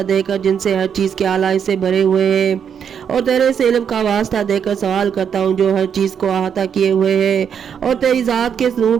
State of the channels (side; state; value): left; quieter; 7.7 dB